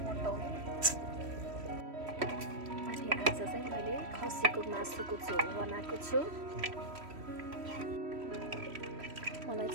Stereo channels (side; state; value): left; late; 3.1 ms